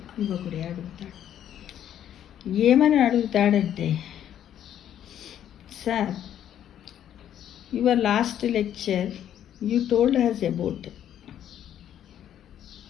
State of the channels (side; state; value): right; quieter; 10.5 dB